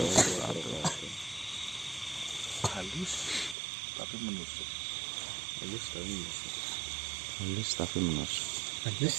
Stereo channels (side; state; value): left; drops out; at 3.6 s